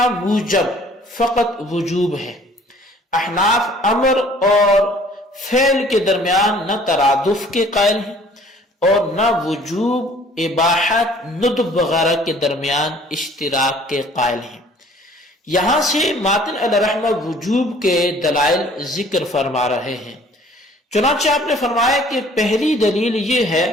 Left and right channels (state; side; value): normal; both; correlation 0.54